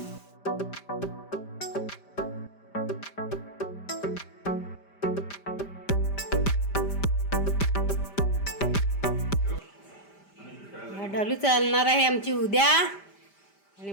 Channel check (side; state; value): right; late; 5.0 ms